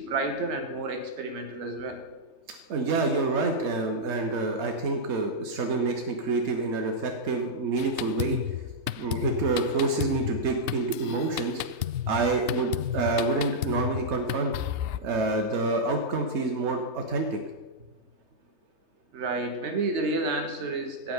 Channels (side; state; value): left; late; 3.3 ms